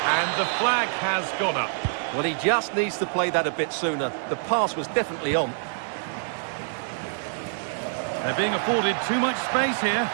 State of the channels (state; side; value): silent; left; digital silence